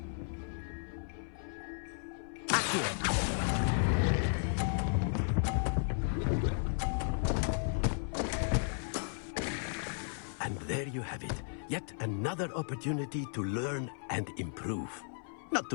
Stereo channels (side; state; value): right; silent; 55 dB below the other